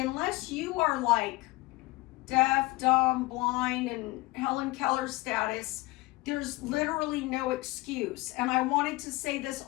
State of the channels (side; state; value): right; quieter; 21.1 dB